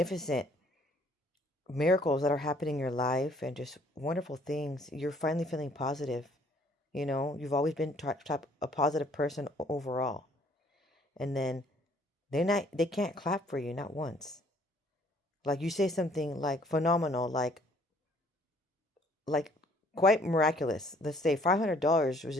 miracles that are happening in your life and just wonderful things. You're finally feeling positive. You've always been a positive person overall. And then they can't clap for you, not once. Like you say something like phenomenal, like quite miraculous. Let's say $500 was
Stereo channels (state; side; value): normal; both; correlation 0.60